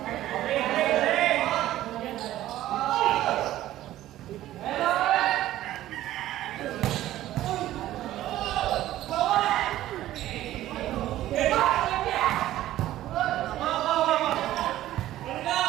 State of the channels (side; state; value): left; quieter; 14.2 dB